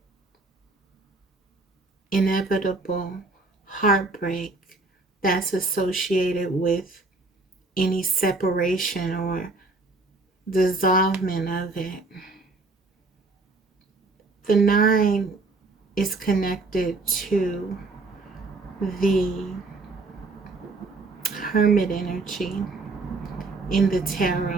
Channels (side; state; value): left; quieter; 3.4 dB